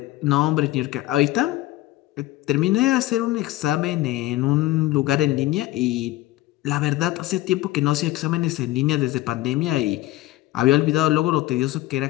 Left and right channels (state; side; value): quieter; right; 16.9 dB